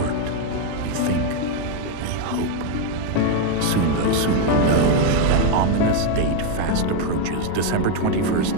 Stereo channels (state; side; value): different; both; correlation 0.01